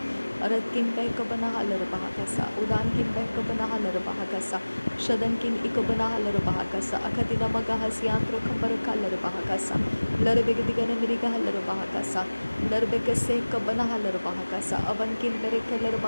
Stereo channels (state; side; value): inverted; both; correlation -1.00